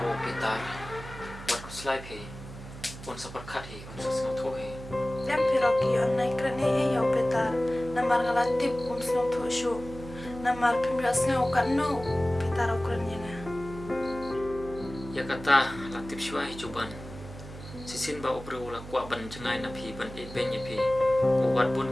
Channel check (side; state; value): right; noise; hum, 13 dB below the sound